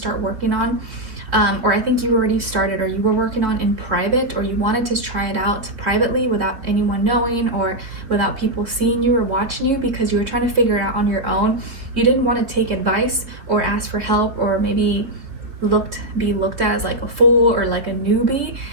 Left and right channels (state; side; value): late; left; 3.8 ms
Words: working on, or I think you already started, or you were working on in private, or you wanted to try it out privately without anyone knowing, or without people seeing you or watching you, because you were trying to figure it out on your own. You didn't want to take advice or ask for help, or maybe be looked at as like a fool or like a newbie,